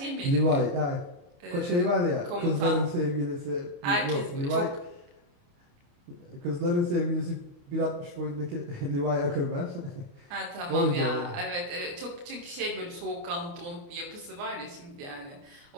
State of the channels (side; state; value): left; late; 29 ms